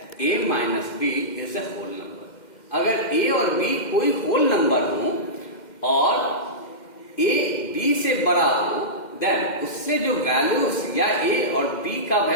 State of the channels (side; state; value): right; late; 2.1 ms